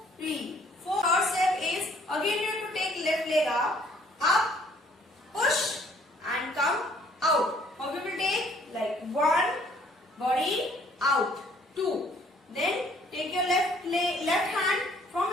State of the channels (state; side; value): normal; both; correlation 0.61